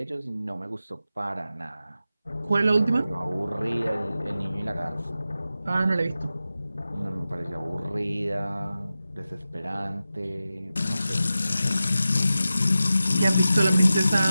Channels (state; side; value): inverted; both; correlation -0.93